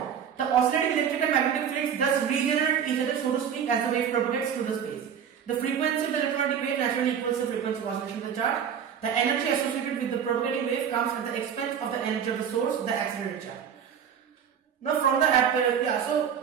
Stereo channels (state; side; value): quieter; left; 8.0 dB